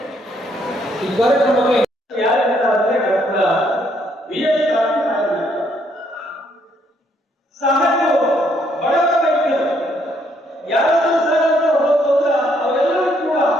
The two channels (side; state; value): both; normal; correlation 0.70